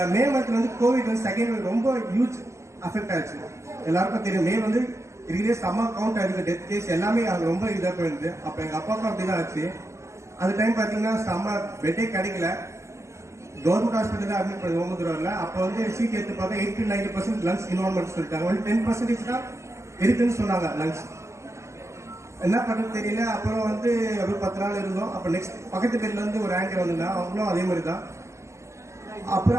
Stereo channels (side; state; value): left; late; 0.13 ms